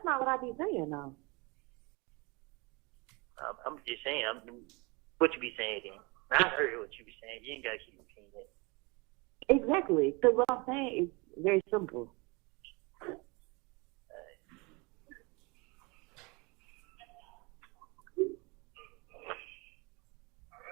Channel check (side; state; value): left; quieter; 27.5 dB